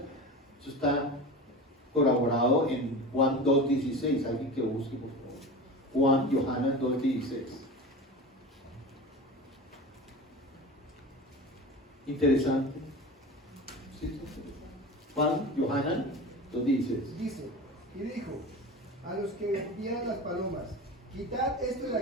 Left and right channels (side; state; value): both; normal; correlation 0.31